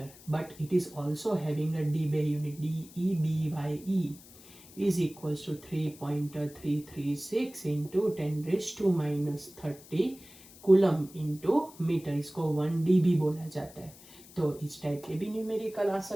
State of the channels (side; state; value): left; noise; hiss, 21 dB below the sound